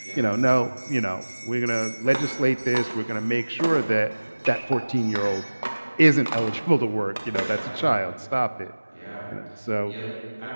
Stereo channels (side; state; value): both; inverted; correlation -1.00